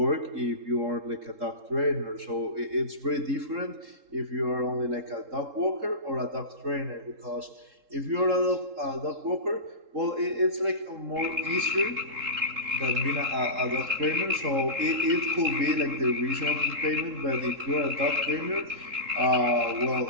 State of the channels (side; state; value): left; late; 3.7 ms